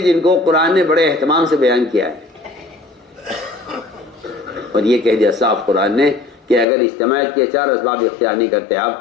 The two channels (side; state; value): right; drops out; at 6.7 s